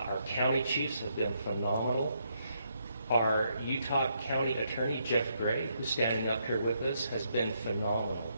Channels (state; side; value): inverted; both; correlation -0.76